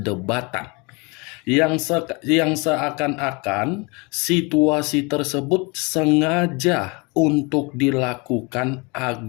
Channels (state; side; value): quieter; right; 28.8 dB